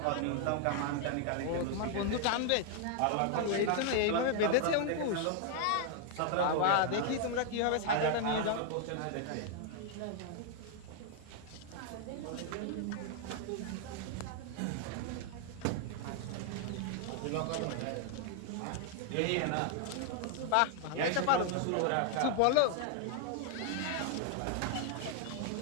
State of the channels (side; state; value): both; different; correlation 0.00